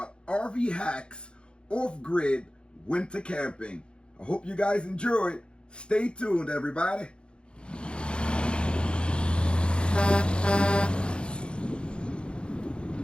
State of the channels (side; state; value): right; late; 0.055 ms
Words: RV hacks, off-grid, winter camping. I hope you guys enjoy it. Stay tuned, everybody.